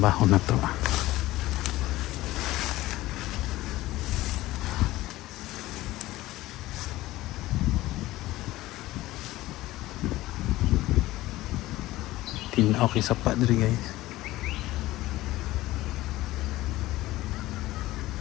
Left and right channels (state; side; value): quieter; right; 17.2 dB